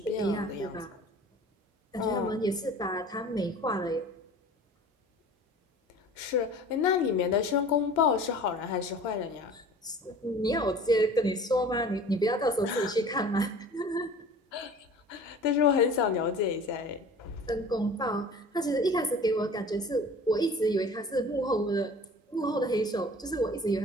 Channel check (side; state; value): both; normal; correlation 0.43